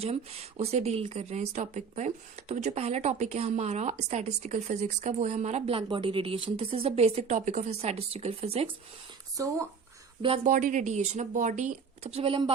हम उसे डील कर रहे हैं इस टॉपिक पर। तो जो पहला टॉपिक है हमारा स्टैटिस्टिकल फिजिक्स का, वो है हमारा black body radiation. This is the basic topic of statistical physics. So black body radiation, अब बॉडी, सबसे पहले हम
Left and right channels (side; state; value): left; quieter; 5.9 dB